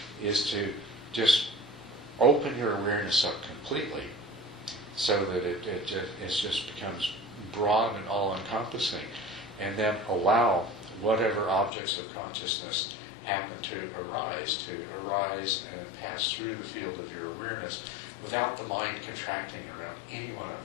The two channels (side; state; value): right; drops out; at 11.7 s